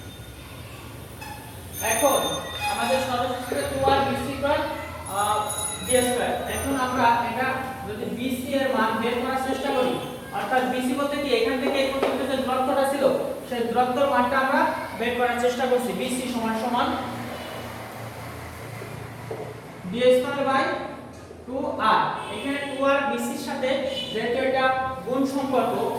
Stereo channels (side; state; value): both; identical; correlation 1.00